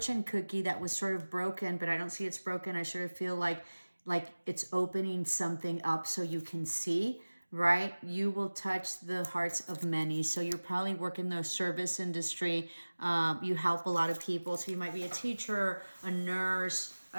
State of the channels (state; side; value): inverted; both; correlation -1.00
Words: cookie that was sort of broken, but I don't see it's broken. I sort of feel like it's opening something up so you can see, right? You will touch the hearts of many. So you're probably working the service industry. You help a lot of people. So you might be a teacher, a nurse,